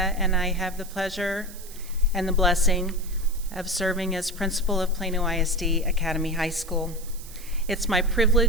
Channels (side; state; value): right; noise; hiss, 17 dB below the sound